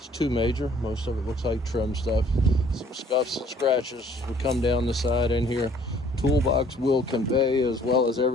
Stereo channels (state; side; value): normal; both; correlation 0.58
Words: too major. Most of it looks like trim stuff. Some scuffs and scratches would come down the side in here. Toolbox will convey as well as